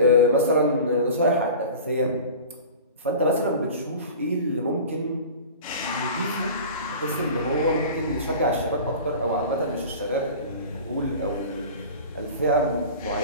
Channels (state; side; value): inverted; both; correlation -0.37